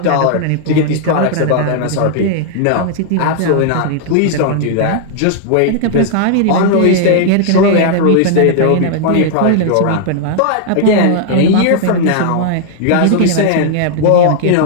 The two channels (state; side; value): different; both; correlation -0.01